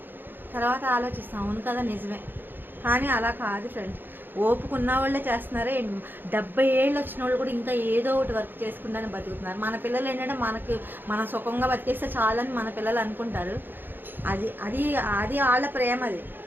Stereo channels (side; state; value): left; late; 0.095 ms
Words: తర్వాత ఆలోచిస్తాం, అవును కదా నిజమే. కానీ అలా కాదు ఫ్రెండ్స్, ఓపుకున్న వాళ్ళే చేస్తున్నారే. 70 ఏళ్ళు వచ్చిన వాళ్ళు కూడా ఇంకా ఏదో ఒకటి వర్క్ చేసుకుంటానే బతుకుతున్నారు. మన పిల్లలు ఏంటంటే మన సుఖంగా బతికేస్తే చాలని మన పిల్లలు అనుకుంటారు. అది అది అది వాళ్ళ ప్రేమ అది.